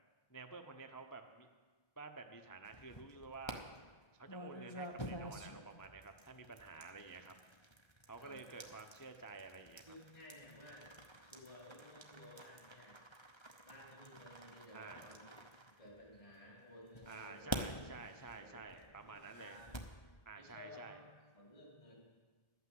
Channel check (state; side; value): late; right; 1.3 ms